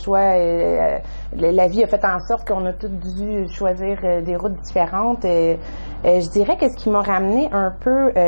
la vie a fait en sorte qu'on a tous dû choisir des routes différentes. Je dirais que ce qui m'a ramené un peu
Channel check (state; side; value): inverted; both; correlation -1.00